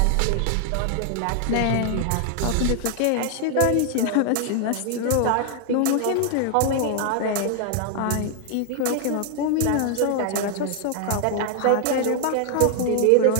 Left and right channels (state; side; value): different; both; correlation 0.00